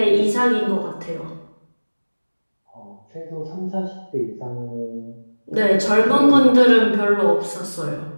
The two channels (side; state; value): both; inverted; correlation -1.00